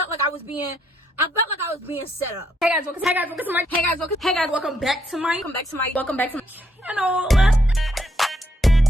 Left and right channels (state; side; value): normal; both; correlation 0.74